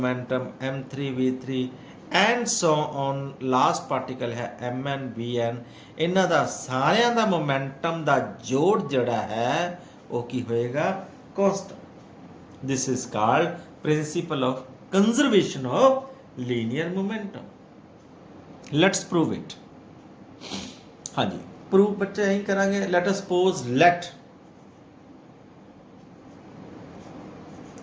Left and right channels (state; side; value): identical; both; correlation 1.00